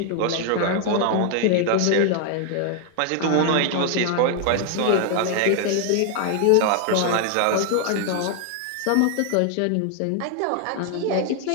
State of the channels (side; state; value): both; different; correlation 0.00